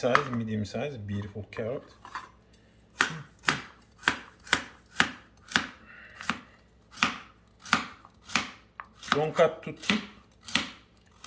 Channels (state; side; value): identical; both; correlation 1.00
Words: medium size, beautiful carrot. Don't cut too thick,